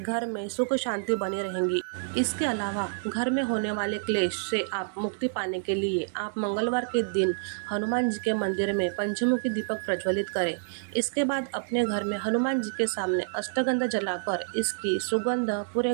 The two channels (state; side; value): silent; left; digital silence